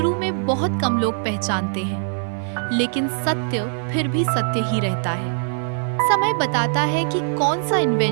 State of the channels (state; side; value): silent; left; 56 dB below the other